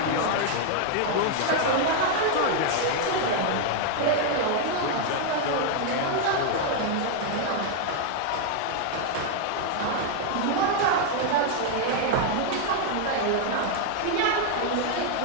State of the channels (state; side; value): different; both; correlation 0.00